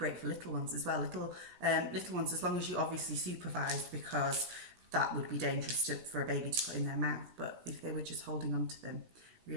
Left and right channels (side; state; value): left; late; 17 ms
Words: for little ones as well, little ones, as long as you obviously supervised, because that would be dangerous for a baby to put in their mouth, but if they were just holding on to them,